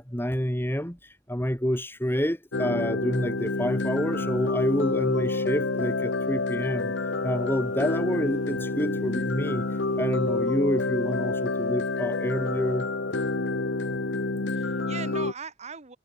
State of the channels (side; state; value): both; normal; correlation 0.46